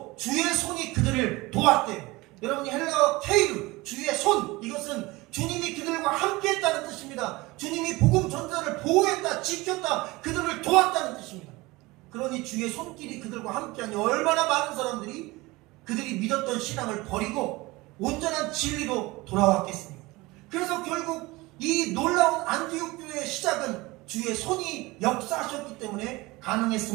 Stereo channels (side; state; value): left; quieter; 21.8 dB